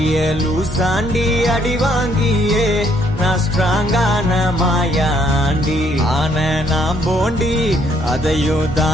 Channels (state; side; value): normal; both; correlation 0.68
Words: லூசாண்டி அடி வாங்கியே நான் ஸ்ட்ராங்கான மாயாண்டி. ஆன நான் போண்டி அதையும்